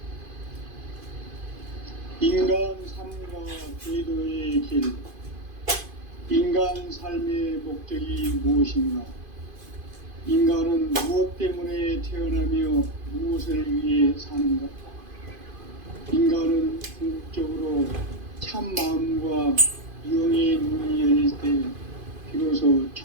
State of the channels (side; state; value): left; late; 2.5 ms